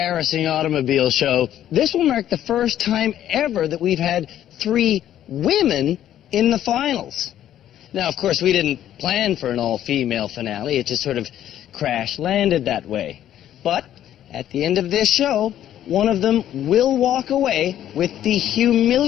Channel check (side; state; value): right; quieter; 11.5 dB